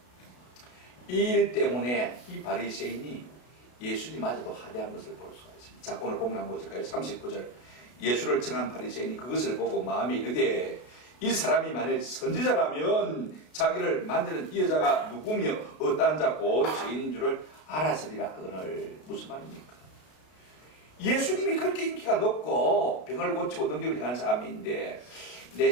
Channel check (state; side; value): late; right; 33 ms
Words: 이 일 때문에 이 바리새인이 예수님마저도 하대한 것을 볼 수가 있습니다. 자, 오늘 본문 한번 보실까요? 39절. 예수를 청한 바리새인이 그것을 보고 마음에 이르되 이 사람이 만일 선지자라면 자기를 만드는 이 여자가 누구며 어떠한 자고 죄인인 줄을 알았으리라 하거늘. 무슨 말입니까? 예수님이 그렇게 인기가 높고 병을 고치고 능력을 행하는 사람인데 내